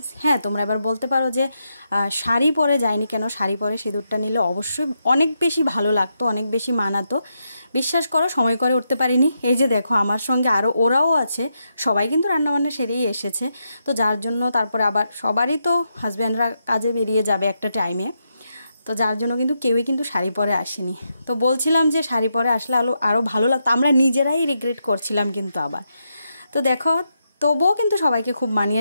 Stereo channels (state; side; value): inverted; both; correlation -0.83